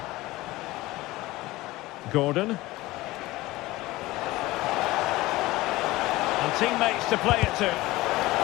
Gordon. And teammates to play it to.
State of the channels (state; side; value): quieter; right; 18.9 dB